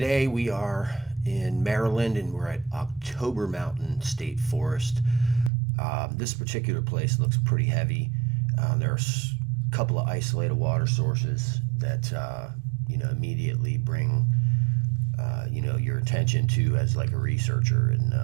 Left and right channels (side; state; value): left; drops out; at 5.5 s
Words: we are in Maryland and we're at October Mountain State Forest. This particular place looks pretty heavy. There's a couple of isolated water sources that immediately bring your attention to as like a researcher,